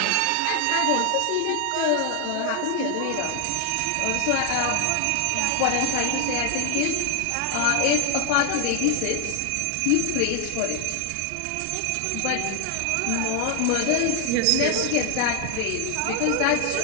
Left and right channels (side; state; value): both; different; correlation 0.00